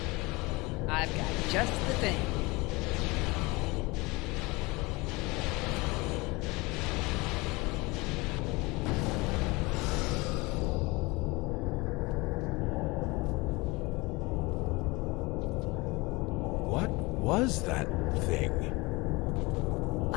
I've got just the thing. Was that thing?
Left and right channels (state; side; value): quieter; right; 24.2 dB